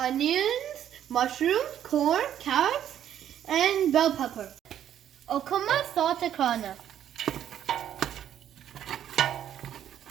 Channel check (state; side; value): quieter; left; 10.4 dB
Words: mushrooms, corn, carrots, and bell pepper. Okuma saltakana.